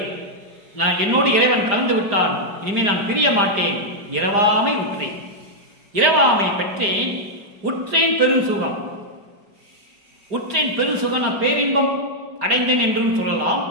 நான் என்னோடு இறைவன் கலந்து விட்டான், இனிமேல் நான் பிரிய மாட்டேன், இரவாமை உற்றேன், இரவாமை பெற்றேன், உற்றேன் பெருசுகம். உற்றேன் பெருசுகம், நான் பேரின்பம் அடைந்தேன் என்றும் சொல்லலாம்,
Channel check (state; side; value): late; left; 5.0 ms